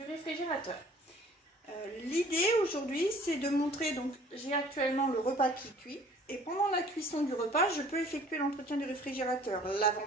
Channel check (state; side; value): normal; both; correlation 0.52